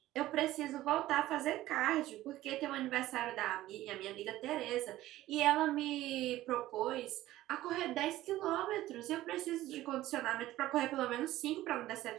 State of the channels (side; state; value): left; quieter; 15.4 dB